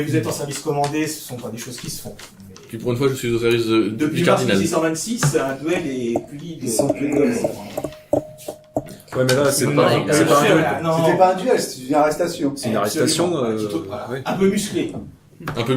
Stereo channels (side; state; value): both; identical; correlation 1.00